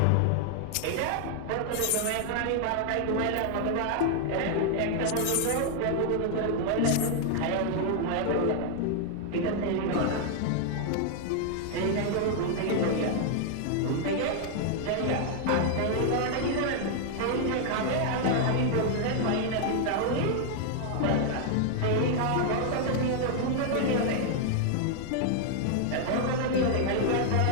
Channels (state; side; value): different; both; correlation 0.00